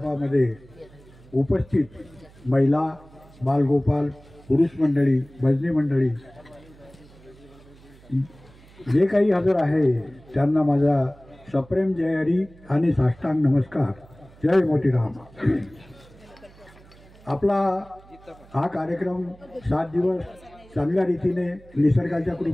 उपस्थित महिला, बालगोपाल, पुरुष मंडळी, भजनी मंडळी जे काही हजर आहे त्यांना माझा सप्रेम जय हरी आणि साष्टांग नमस्कार. जय मोतीराम. आपला हा कार्यक्रम 7 दिवस चांगल्या रीतीने निसर्गाच्या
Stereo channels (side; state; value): right; noise; hum, 24 dB below the sound